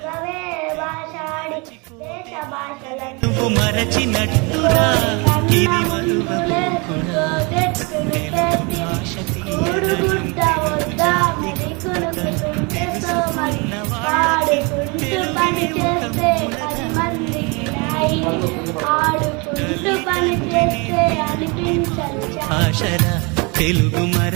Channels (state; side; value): quieter; left; 29.7 dB